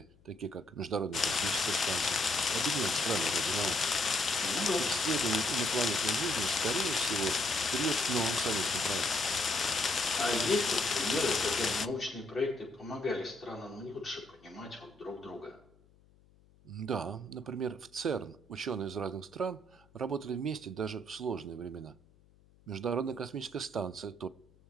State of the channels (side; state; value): left; noise; hum, 29 dB below the sound